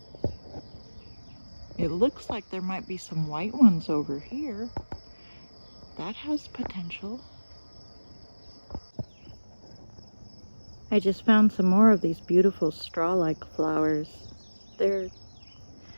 It looks like there might be some white ones over here. That has potential. I just found some more of these beautiful straw-like flowers. They're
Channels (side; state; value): both; inverted; correlation -1.00